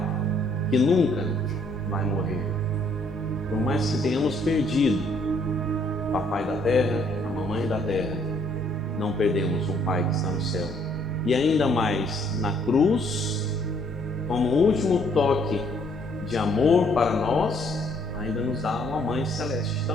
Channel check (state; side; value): normal; both; correlation 0.65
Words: que nunca vai morrer. Por mais que tenhamos perdido o papai da terra, a mamãe da terra, não perdemos um Pai que está no céu. E ainda mais na cruz, como último toque de amor para nós, ainda nos dá uma Mãe Celeste